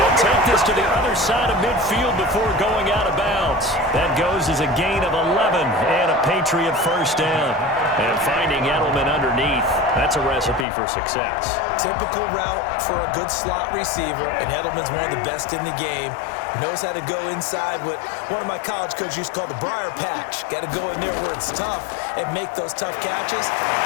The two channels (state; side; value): drops out; right; at 10.7 s